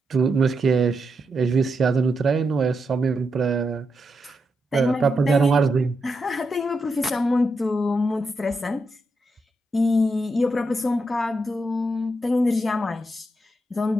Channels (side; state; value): both; normal; correlation 0.84